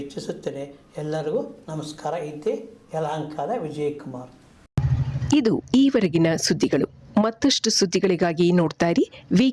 ಇಚ್ಛಿಸುತ್ತೇನೆ. ಎಲ್ಲರಿಗೂ ನಮಸ್ಕಾರ. ಇದ್ದೆ ಯಲಹಂಕದ ವಿಜಯಕುಮಾರ್. ಇದು ಈವರೆಗಿನ ಸುದ್ದಿಗಳು. ಮತ್ತಷ್ಟು ಸುದ್ದಿಗಳಿಗಾಗಿ ನೋಡ್ತಾ ಇರಿ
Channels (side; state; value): both; identical; correlation 1.00